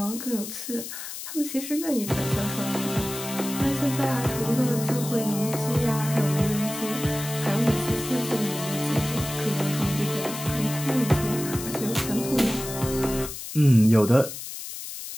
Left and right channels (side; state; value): left; noise; hiss, 9 dB below the sound